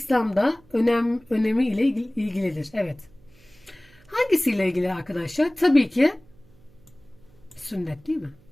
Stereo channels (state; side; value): noise; right; hum, 29 dB below the sound